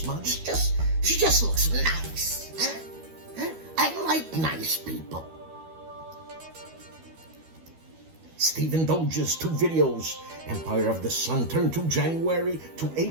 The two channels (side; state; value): left; late; 12 ms